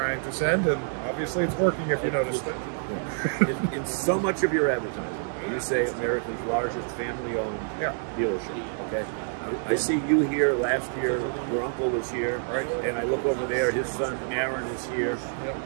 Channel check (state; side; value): silent; left; 60 dB below the other